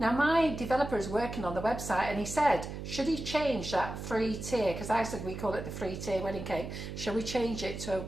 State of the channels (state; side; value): noise; right; hum, 8 dB below the sound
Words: Now my developer is working on the website and he said, should he change that free tier? Because I said we call it the free tier wedding cake. Shall we change it to a